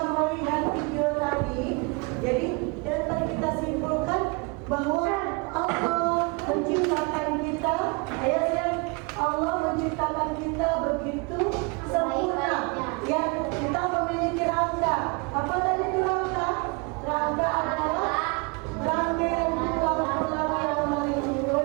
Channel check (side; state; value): left; quieter; 30.4 dB